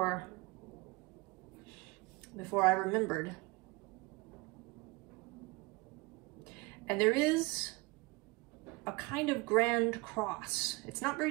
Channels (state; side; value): quieter; left; 24.8 dB